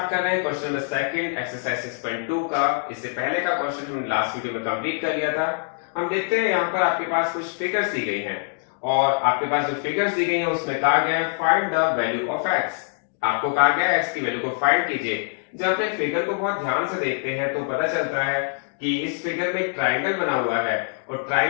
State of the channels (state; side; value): silent; right; 63 dB below the other